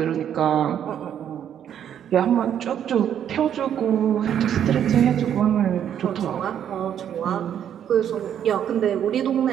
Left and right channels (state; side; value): quieter; left; 9.5 dB